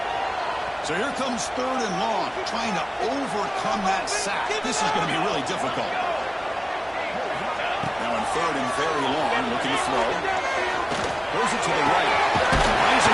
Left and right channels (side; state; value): both; identical; correlation 1.00